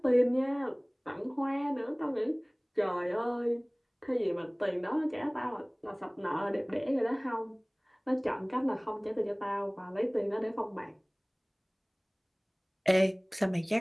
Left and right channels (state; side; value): identical; both; correlation 1.00